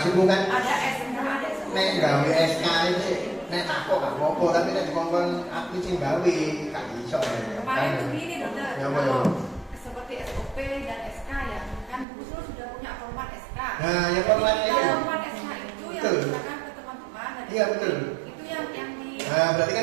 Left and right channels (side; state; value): left; drops out; at 12.1 s